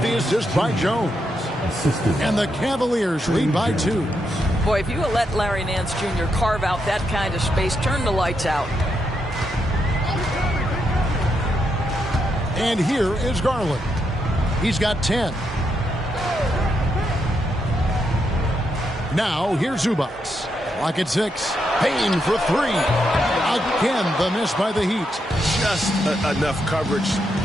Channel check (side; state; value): both; normal; correlation 0.81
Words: the assist by Jones. And the Cavaliers lead by 2. Boy, if you let Larry Nance Jr. carve out that kind of space, turn the lights out. And here is Garland. He's got 10. Now, here's Zubac. Clock at 6. Payne for 3. Again, the miss by the Heat. Just enough coverage